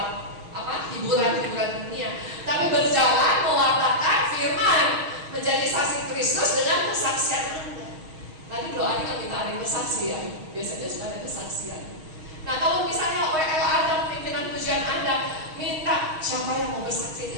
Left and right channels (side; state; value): left; late; 6.3 ms